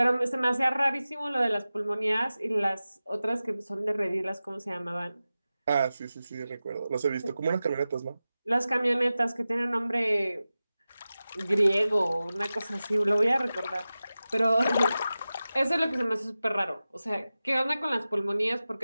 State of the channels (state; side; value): inverted; both; correlation -0.95